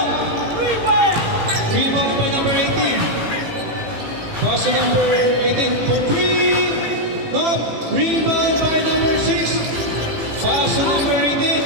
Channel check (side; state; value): left; late; 18 ms